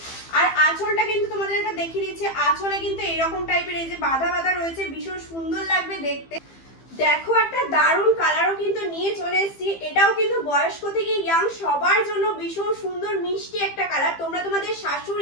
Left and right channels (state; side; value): late; right; 15 ms